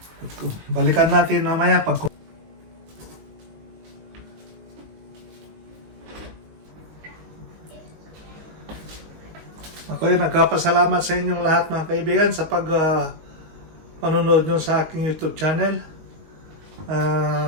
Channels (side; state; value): left; late; 19 ms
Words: Balikan natin mamaya pag Ako ay nagpapasalamat sa inyong lahat mga kaibigan sa panonood nyo sa aking YouTube channel.